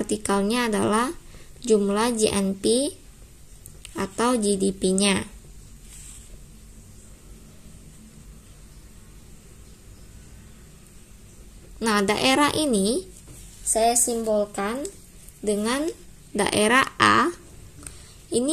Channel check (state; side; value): identical; both; correlation 1.00